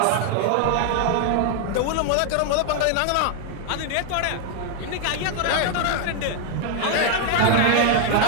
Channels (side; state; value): both; different; correlation 0.00